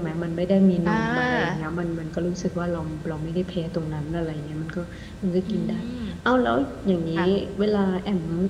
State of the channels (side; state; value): both; identical; correlation 1.00